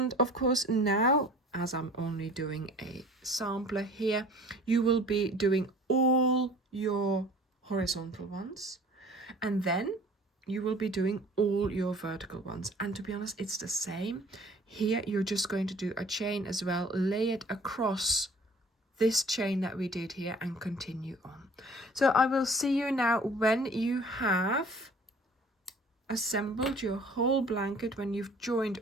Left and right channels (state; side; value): normal; both; correlation 0.49